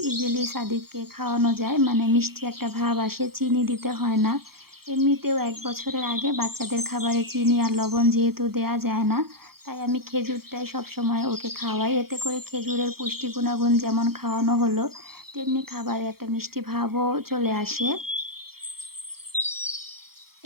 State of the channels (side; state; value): left; late; 0.94 ms